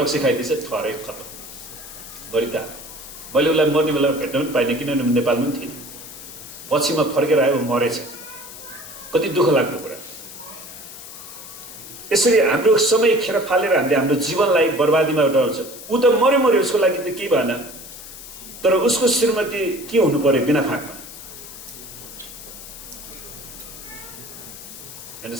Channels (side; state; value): left; noise; hiss, 14 dB below the sound